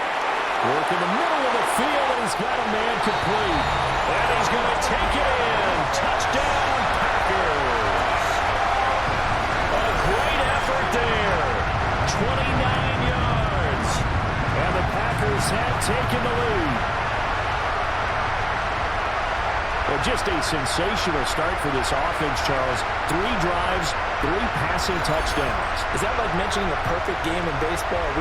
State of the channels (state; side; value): identical; both; correlation 1.00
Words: Work in the middle of the field, and he's got a man complete. And he's going to take it in. Touchdown, Packers. A great effort there. 29 yards. And the Packers have taken the lead. Well, just a sensational start for this offense, Charles. 3 drives, 3 passing touchdowns. Is that like mentioning a perfect game in baseball? Or are